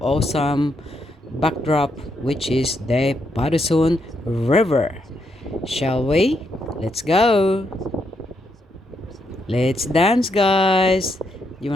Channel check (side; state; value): both; normal; correlation 0.79